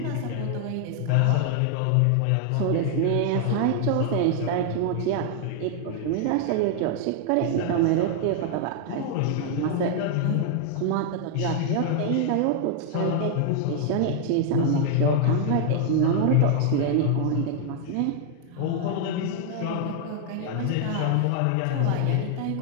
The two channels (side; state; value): both; different; correlation 0.00